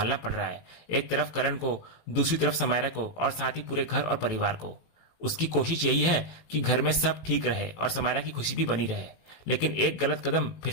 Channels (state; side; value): late; right; 18 ms